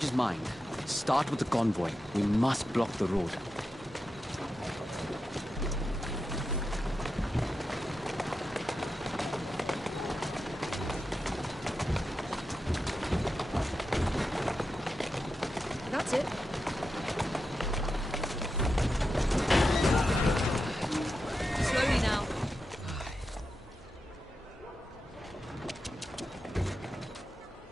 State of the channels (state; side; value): normal; both; correlation 0.89